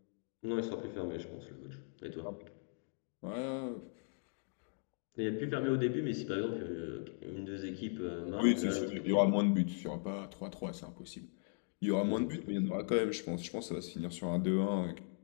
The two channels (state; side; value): silent; right; 52 dB below the other